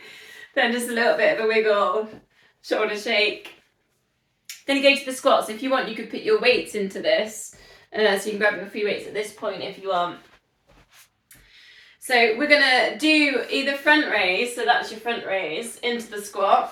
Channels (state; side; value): identical; both; correlation 1.00